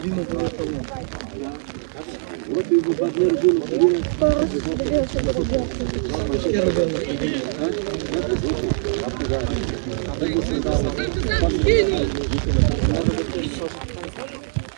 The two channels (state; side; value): silent; left; 64 dB below the other